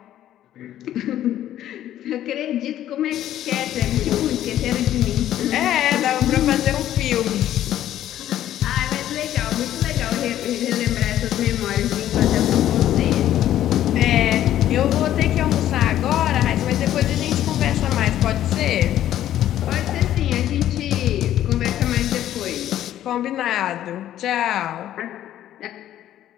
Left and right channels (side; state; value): right; quieter; 12.2 dB